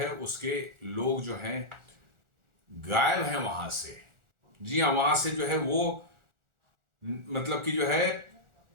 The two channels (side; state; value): left; late; 1.4 ms